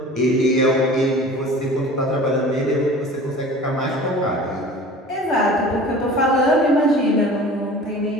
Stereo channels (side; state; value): both; normal; correlation 0.42